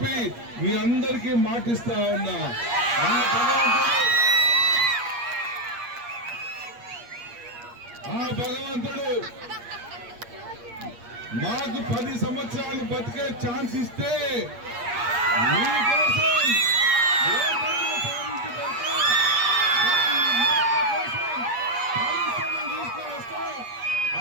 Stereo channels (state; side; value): late; left; 8.5 ms